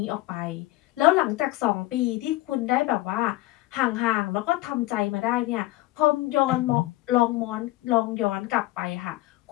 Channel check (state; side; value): quieter; right; 18.1 dB